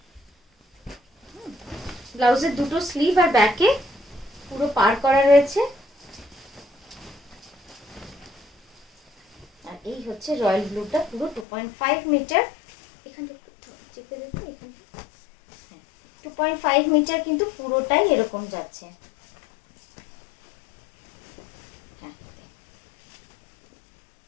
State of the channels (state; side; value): drops out; right; at 11.5 s